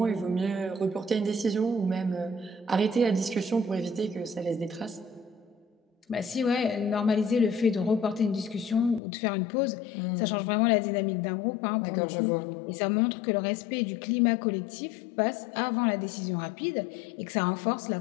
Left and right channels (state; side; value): drops out; right; at 9.0 s